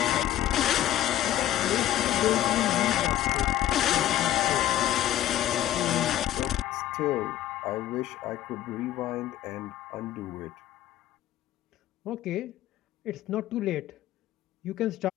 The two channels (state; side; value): quieter; right; 12.9 dB